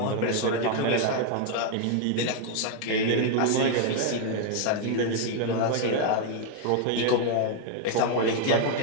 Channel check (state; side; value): different; both; correlation 0.00